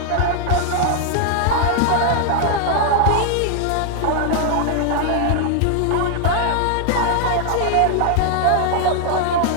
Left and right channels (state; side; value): different; both; correlation 0.00